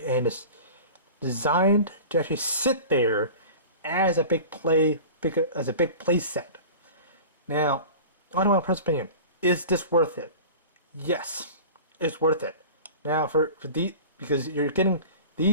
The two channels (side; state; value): both; inverted; correlation -0.37